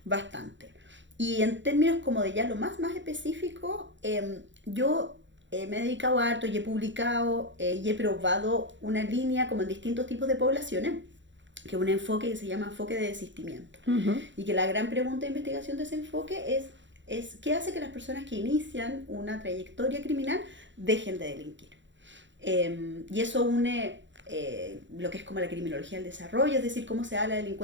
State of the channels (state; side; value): late; left; 0.54 ms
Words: bastante. Y en términos como de ya lo más específico, yo me he dedicado a harto y he publicado y he probado una línea como en distintos tipos de poblaciones, que es un enfoque que se llama enfoque de desistimiento. Y que la gran pregunta de investigación de ese enfoque es ¿qué hace que las personas que inician una trayectoria criminal dejen de delinquir? Y eso une lo que es como la criminología del desarrollo, es decir, cómo se da la